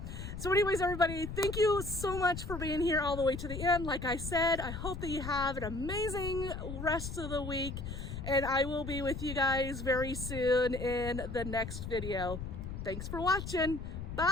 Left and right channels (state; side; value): noise; left; rumble, 7 dB below the sound